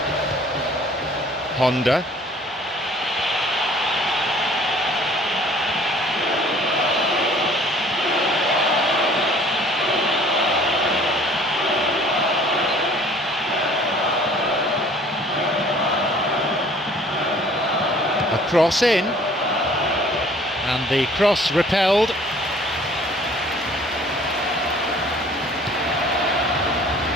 Honda, a cross in, and the cross repelled.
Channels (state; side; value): normal; both; correlation 0.53